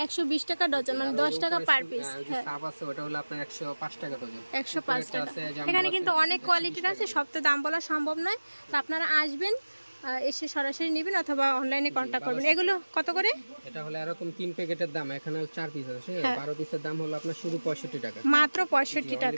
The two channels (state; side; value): inverted; both; correlation -1.00